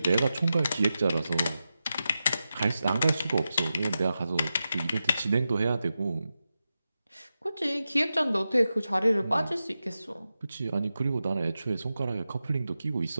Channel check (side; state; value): both; inverted; correlation -0.90